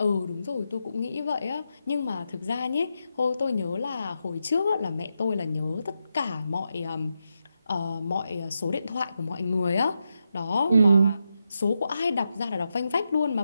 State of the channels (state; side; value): inverted; both; correlation -0.86